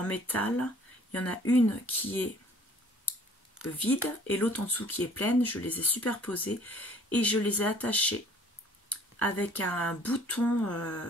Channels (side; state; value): both; normal; correlation 0.55